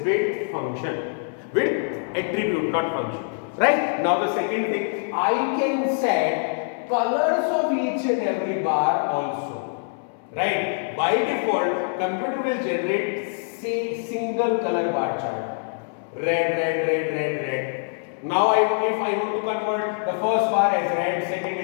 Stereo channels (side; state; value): right; silent; 62 dB below the other